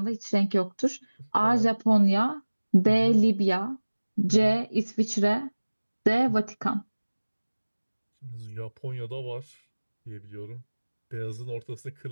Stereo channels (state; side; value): inverted; both; correlation -1.00